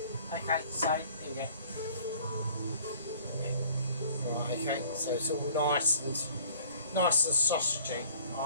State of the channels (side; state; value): both; inverted; correlation -0.53